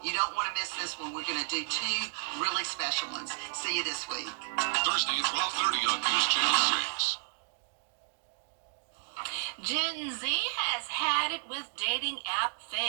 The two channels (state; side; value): silent; left; 56 dB below the other